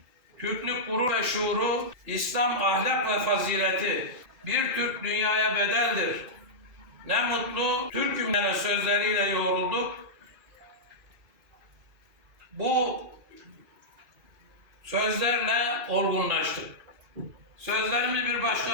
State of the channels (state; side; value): late; left; 1.3 ms